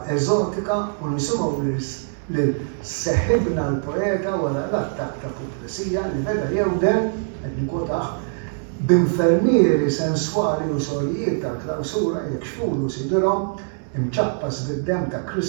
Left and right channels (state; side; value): silent; left; digital silence